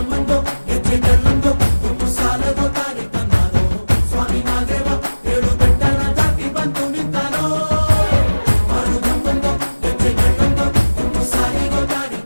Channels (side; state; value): both; inverted; correlation -1.00